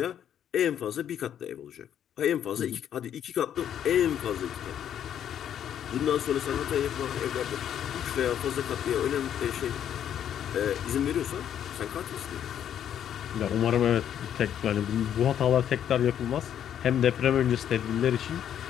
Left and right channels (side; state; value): right; quieter; 9.8 dB